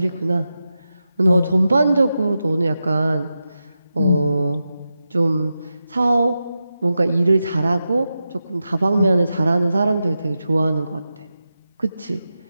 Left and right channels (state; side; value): inverted; both; correlation -0.90